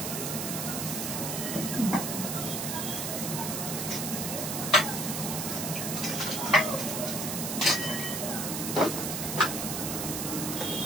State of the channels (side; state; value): right; noise; hiss, 2 dB below the sound